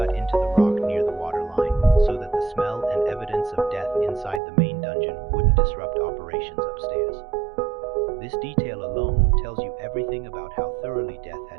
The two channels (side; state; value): left; drops out; at 4.4 s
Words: into the rock near the waterline, so that the smell and evidence of death inside the main dungeon wouldn't disrupt operations upstairs. This detail alone tells you everything about how thoroughly death